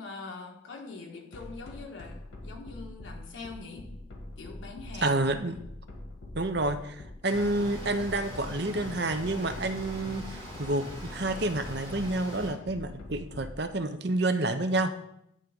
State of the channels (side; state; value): both; normal; correlation 0.35